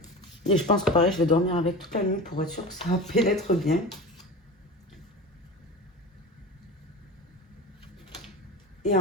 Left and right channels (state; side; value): normal; both; correlation 0.31